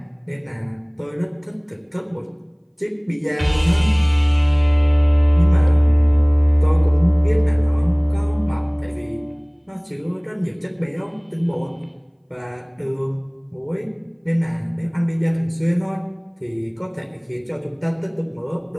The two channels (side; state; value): both; identical; correlation 1.00